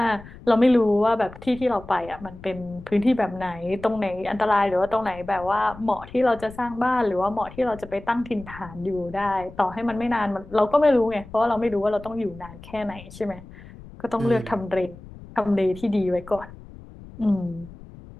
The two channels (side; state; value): left; noise; rumble, 18 dB below the sound